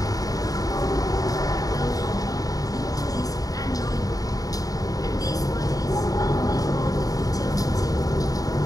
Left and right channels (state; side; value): late; right; 0.18 ms